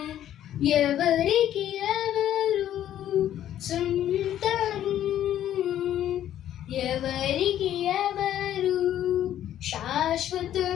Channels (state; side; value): quieter; right; 11.5 dB